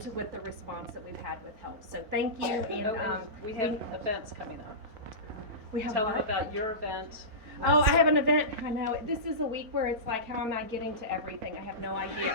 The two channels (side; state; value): left; late; 4.7 ms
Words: with the response that we've had with help. So thank you. And we have events coming up. we have Tell them what? about your event. Oh, I have an event. I know. This is a week where it's like, how am I getting to everything? I have no